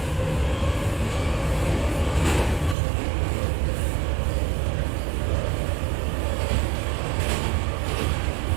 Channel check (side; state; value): left; drops out; at 2.8 s